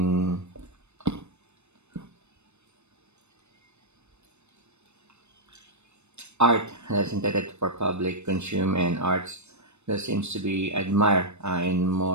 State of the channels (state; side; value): late; left; 0.81 ms